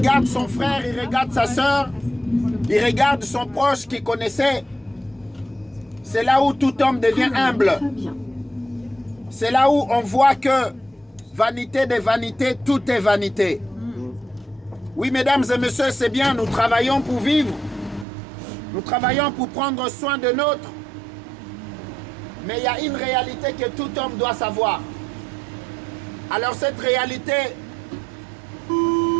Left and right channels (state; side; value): drops out; left; at 18.1 s